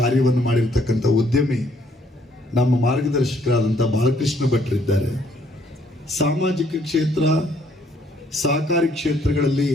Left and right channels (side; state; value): both; normal; correlation 0.66